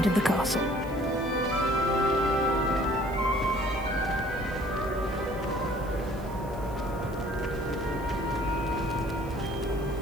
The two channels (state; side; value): noise; right; hiss, 23 dB below the sound